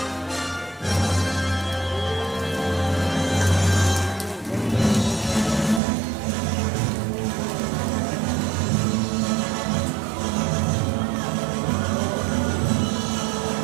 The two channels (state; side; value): drops out; left; at 5.8 s